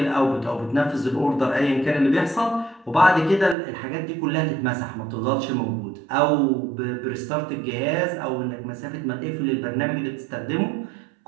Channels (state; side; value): drops out; left; at 3.6 s